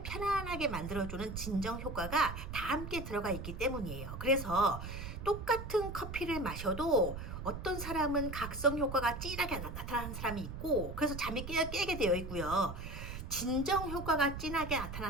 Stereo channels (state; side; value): noise; right; rumble, 7 dB below the sound